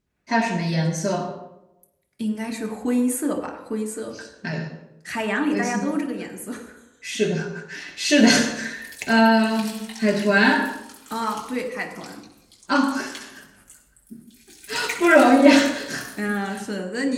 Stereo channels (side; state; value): both; identical; correlation 1.00